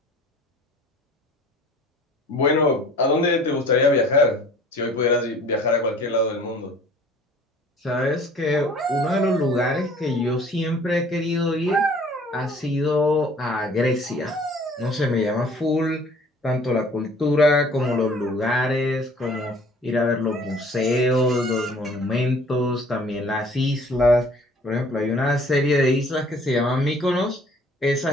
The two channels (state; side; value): normal; both; correlation 0.52